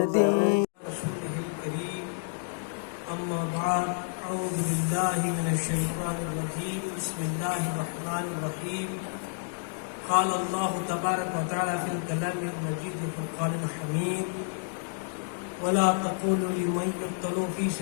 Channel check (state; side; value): silent; right; digital silence